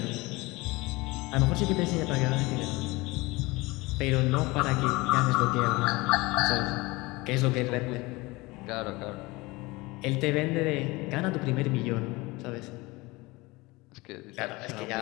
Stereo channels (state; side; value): quieter; right; 22.8 dB